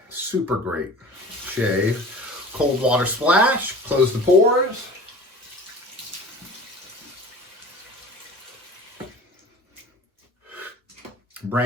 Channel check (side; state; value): both; normal; correlation 0.40